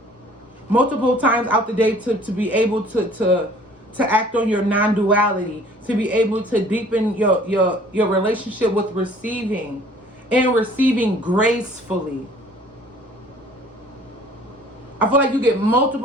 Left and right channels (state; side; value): normal; both; correlation 0.53